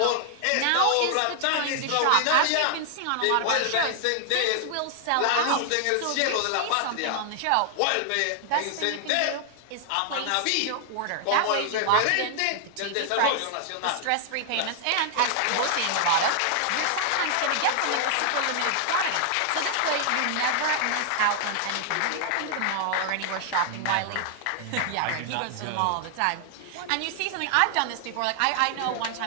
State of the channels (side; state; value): both; different; correlation 0.00